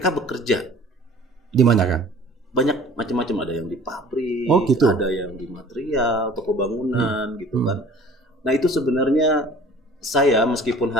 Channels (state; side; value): normal; both; correlation 0.48